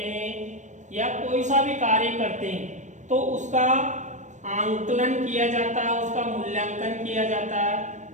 हैं या कोई सा भी कार्य करते हैं तो उसका आंकलन किया जाता है, उसका मूल्यांकन किया जाता है।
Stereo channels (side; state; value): left; late; 0.35 ms